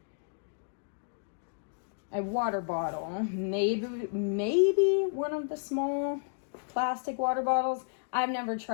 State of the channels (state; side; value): silent; right; digital silence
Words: a water bottle. Maybe one of the small plastic water bottles. I've never